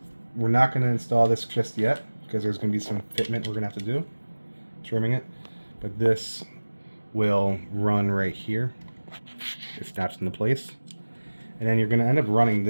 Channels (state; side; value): inverted; both; correlation -1.00